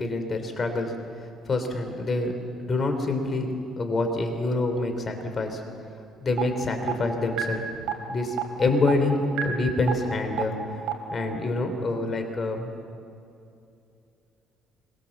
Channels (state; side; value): normal; both; correlation 0.70